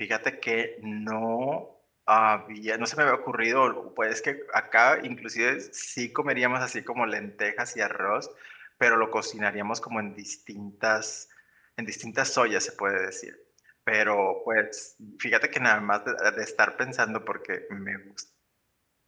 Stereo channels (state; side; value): identical; both; correlation 1.00